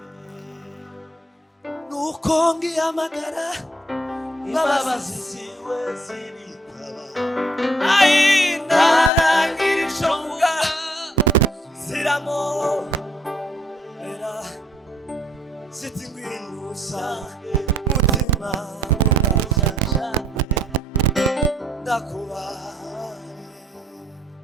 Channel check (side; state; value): both; normal; correlation 0.65